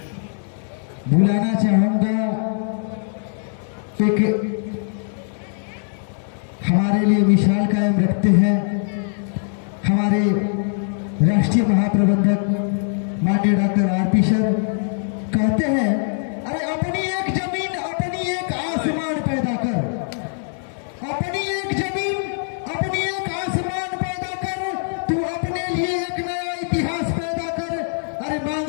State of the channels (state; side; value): silent; right; digital silence